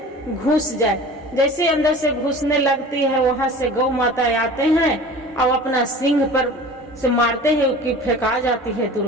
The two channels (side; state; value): both; normal; correlation 0.40